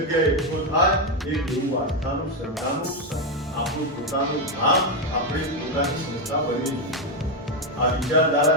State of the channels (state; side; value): normal; both; correlation 0.05